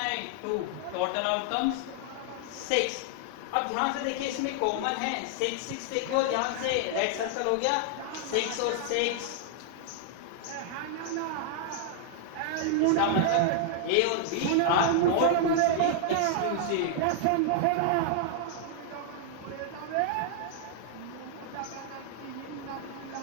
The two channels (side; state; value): both; different; correlation -0.01